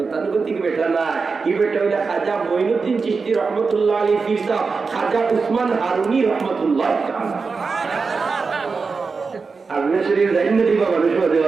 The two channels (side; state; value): left; quieter; 4.7 dB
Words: বেটা না, এই বেটা হইলে খাজা মঈনুদ্দিন চিশতি রহমতুল্লাহ আলাইহি পীর সাহেব, খাজা উসমান হারুনি রহমতুল্লাহ। আপনি শরীর জানেন না দিবা মানুষ হতে